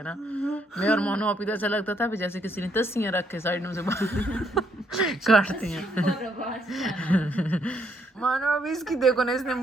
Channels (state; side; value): normal; both; correlation 0.72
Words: ना, मैं और मानो आप ही तो ऐसा लगता था जैसे किसी ने तस्सियाँ रख के साइड में से काटती हैं। और आवाज नहीं मानो अभी इसकी देखो ना, इसने